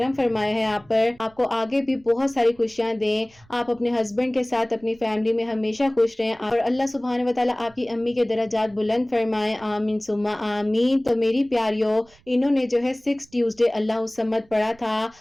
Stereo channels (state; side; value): noise; right; rumble, 29 dB below the sound